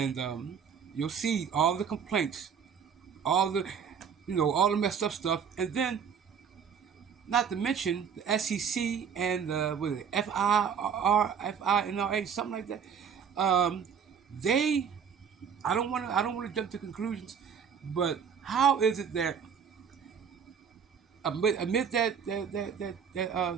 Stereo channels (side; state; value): left; quieter; 7.1 dB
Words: you'll see all the complaints, all the all the messed up stuff, and then not to mention the SEC and what is it, FINRA, something like that. They, I don't want to jump to conclusions, but how is it that amid that